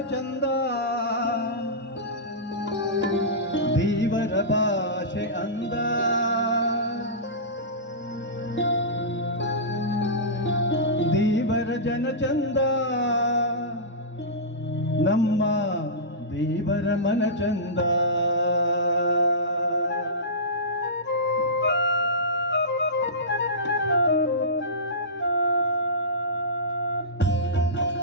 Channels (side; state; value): both; normal; correlation -0.18